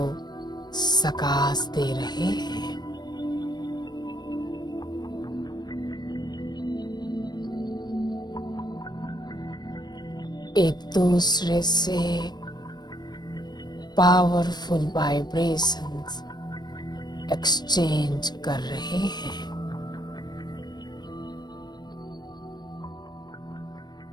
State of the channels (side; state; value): right; late; 0.20 ms